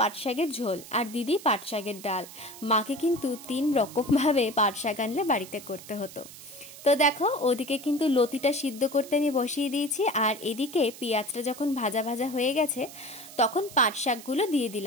পাট শাকের ঝোল, আর দিদি পাট শাকের ডাল। মাকে কিন্তু 3 রকমভাবে পাট শাক আনলে বাড়িতে করতে হতো। তো দেখো, ওদিকে কিন্তু লতিটা সিদ্ধ করতে আমি বসিয়ে দিয়েছি, আর এদিকে পেঁয়াজটা যখন ভাজা ভাজা হয়ে গেছে তখন পাট শাকগুলো দিয়ে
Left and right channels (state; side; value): noise; right; hiss, 16 dB below the sound